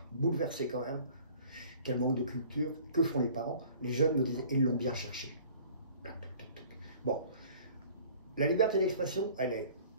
bouleversé quand même, quel manque de culture, que font les parents? Les jeunes me disaient, ils l'ont bien cherché. Bon, la liberté d'expression, elle est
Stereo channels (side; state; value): both; inverted; correlation -0.50